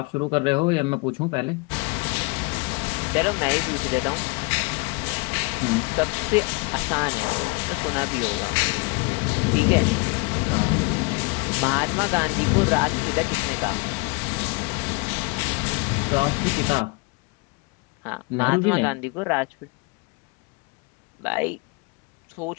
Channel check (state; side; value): quieter; right; 30.6 dB